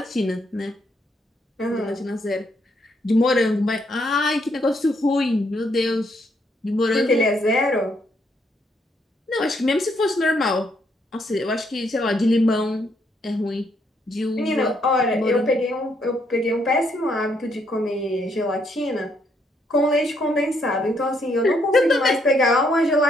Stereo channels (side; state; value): both; normal; correlation 0.73